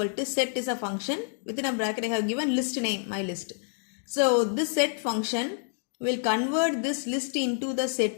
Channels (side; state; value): right; silent; digital silence